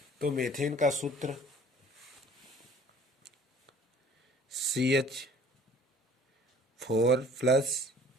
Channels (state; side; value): normal; both; correlation 0.52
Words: तो मेथेन का सूत्र CH4 प्लस